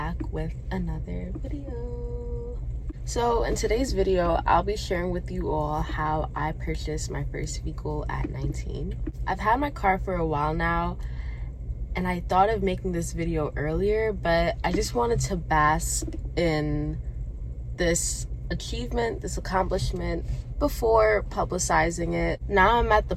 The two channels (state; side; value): identical; both; correlation 1.00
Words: with another video. So in today's video, I'll be sharing with you all how I purchased my first vehicle at 19. I've had my car for a while now, and I thought of making this video earlier, but I just wanted to bask in this achievement, this accomplishment, before publicizing it. Now I'm at the